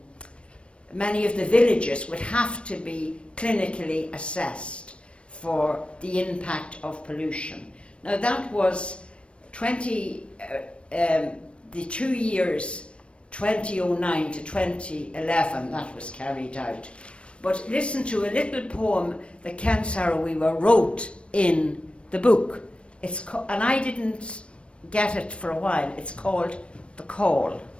villages would have to be clinically assessed for the impact of pollution. Now that was the 2 years 2009 to 2011 that was carried out. But listen to a little poem that Ken Saro Wiwa wrote in the book. And I didn't get it for a while. It's called The Call.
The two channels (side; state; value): right; late; 0.059 ms